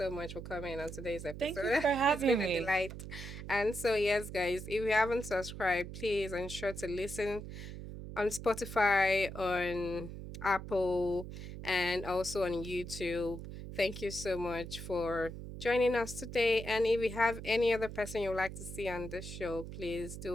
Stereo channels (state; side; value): noise; right; hum, 10 dB below the sound